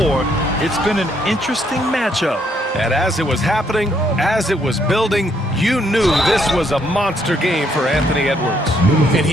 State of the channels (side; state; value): both; normal; correlation 0.71